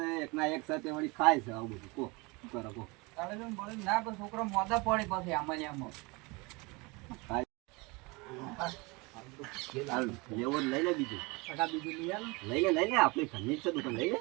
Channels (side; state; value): left; quieter; 26.4 dB